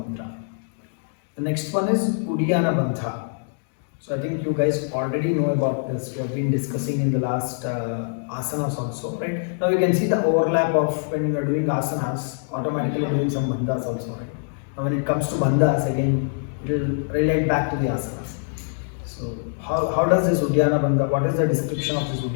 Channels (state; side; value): silent; right; digital silence